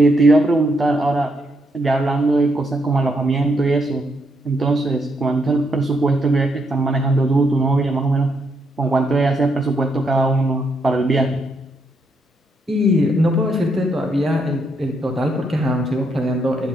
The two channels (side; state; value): both; normal; correlation 0.77